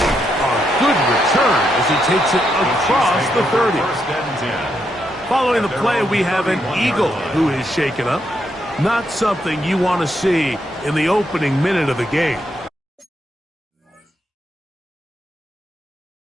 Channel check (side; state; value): both; normal; correlation 0.79